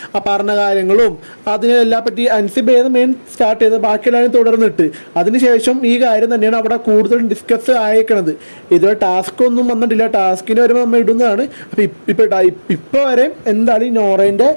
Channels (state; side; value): inverted; both; correlation -1.00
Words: പറഞ്ഞ കാര്യങ്ങളും അതിനെല്ലാം പറ്റി അൻസിബേന്ന് മെയിൻ സ്റ്റാർട്ട് ചെയ്ത് ബാക്കിയെല്ലാവരും തുടർന്നിട്ട് അതിനുശേഷം ഈ കാര്യം തന്നെയാണ് അവിടെ കൂടുതൽ ഡിസ്കസ് ആയേക്കണത്. ഇതുവരെ ടാസ്ക് ഒന്നും വന്നിട്ടില്ല, ടാസ്കിന് വരുമ്പോൾ നമ്മൾ ഇടുന്നതാണ്. അപ്പോൾ ഇപ്പോൾ വരെ എന്താണ് ഈ നോറേൻ്റെ